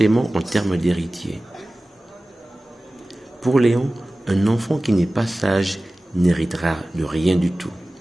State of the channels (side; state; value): both; normal; correlation 0.97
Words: en termes d'héritier. Pour Léon, un enfant qui n'est pas sage n'héritera de rien du tout.